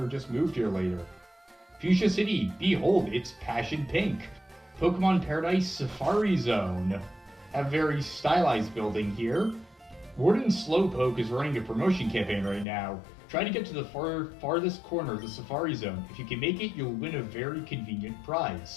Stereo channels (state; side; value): drops out; right; at 12.7 s